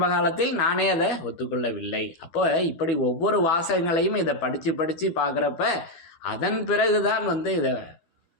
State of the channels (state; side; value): late; right; 12 ms